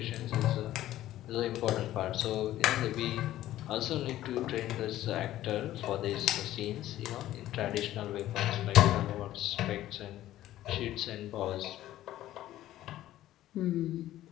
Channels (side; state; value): right; quieter; 14.0 dB